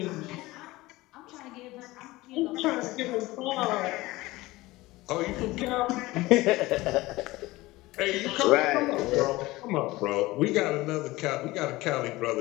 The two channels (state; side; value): quieter; right; 19.5 dB